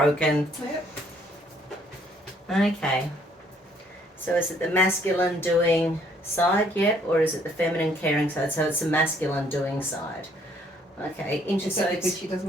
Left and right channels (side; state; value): both; normal; correlation 0.65